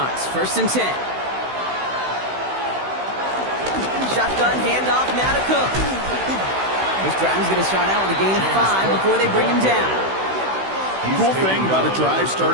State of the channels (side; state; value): left; late; 16 ms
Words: 1st and 10. Shotgun handoff now to Cook. This drive's going to start out with a gain of 5 before they bring him down. The cool thing about a drive